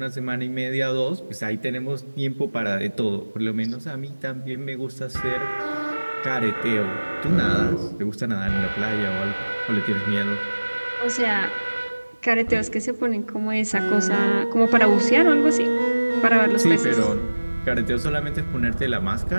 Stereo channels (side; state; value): both; inverted; correlation -1.00